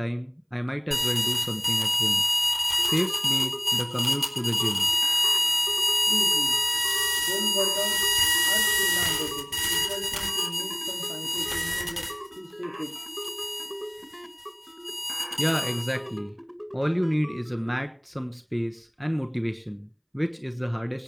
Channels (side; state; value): both; identical; correlation 1.00